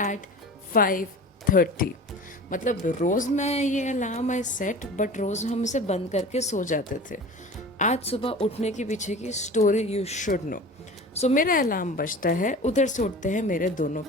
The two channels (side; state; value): both; normal; correlation 0.37